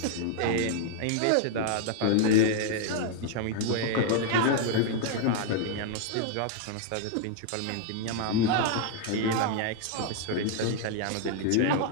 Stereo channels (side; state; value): both; different; correlation 0.00